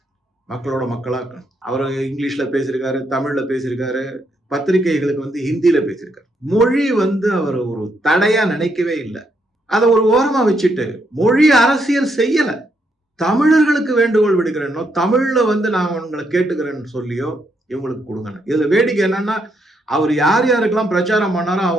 மக்களோட மக்களா அவர் இங்கிலீஷ்ல பேசியிருக்காரு, தமிழ்ல பேசியிருக்காரு, பத்திரிகைகளுக்கு வந்து ஹிந்தியில பேசியிருக்காரு. மொழி வந்து அவர் ஒரு தடையா நினைக்கவே இல்லை. அதை ஒரு ஓரமா வச்சுட்டு மொழி அரசியல் செய்யல. தமிழர்களுக்கு வேண்டுகோள் விடுக்கிறேன்னோ, தமிழ்ல வந்து நான் உங்களை கேட்டுக்கிறேன்னு சொல்லியோ இவங்களுக்கு கொடுங்க. இதுல வேடிக்கை என்னன்னா, அவர் யார் யாருக்கெல்லாம் பிரச்சாரம் பண்ணாரோ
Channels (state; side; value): normal; both; correlation 0.77